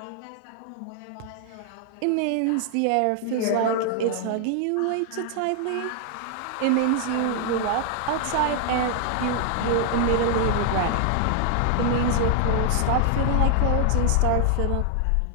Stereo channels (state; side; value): different; both; correlation 0.00